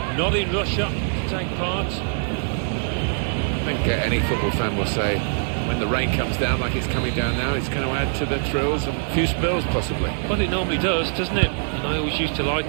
not in Russia to take part. I think any football fan will say when the rain comes down like it's coming down now, it's going to add to the thrills and a few spills possibly. Well, it normally does, doesn't it? And I always used to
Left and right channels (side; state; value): left; silent; 63 dB below the other